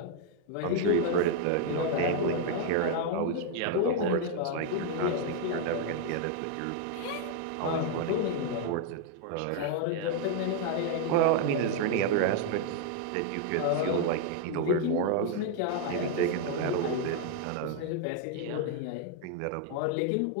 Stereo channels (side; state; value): both; different; correlation 0.00